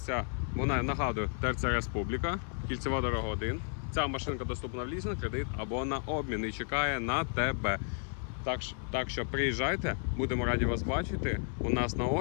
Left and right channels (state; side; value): silent; right; 56 dB below the other